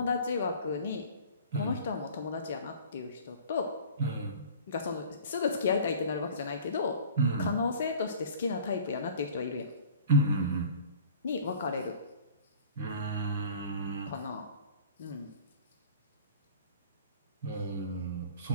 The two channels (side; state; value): both; inverted; correlation -0.45